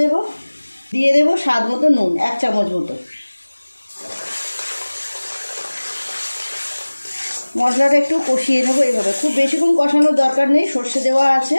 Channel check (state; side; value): inverted; both; correlation -1.00